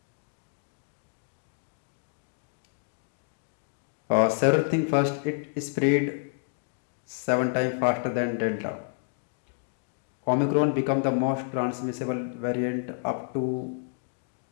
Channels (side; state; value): right; silent; digital silence